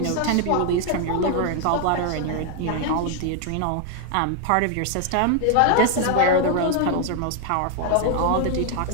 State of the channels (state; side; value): different; both; correlation 0.00